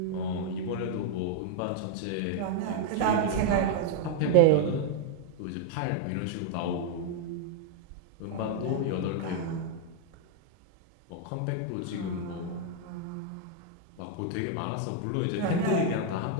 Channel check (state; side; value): different; both; correlation 0.00